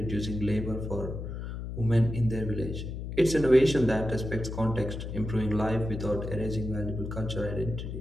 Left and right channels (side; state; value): left; noise; hum, 6 dB below the sound